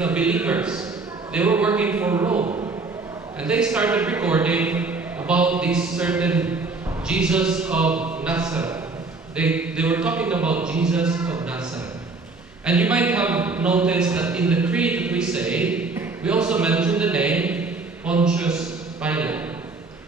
They were working for Rome. And they started recording about this certain Jesus of Nazareth. They were talking about Jesus of Nazareth. And you might have noticed that in the creed that we say, we also mention the name Pontius Pilate.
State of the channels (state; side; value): quieter; left; 3.8 dB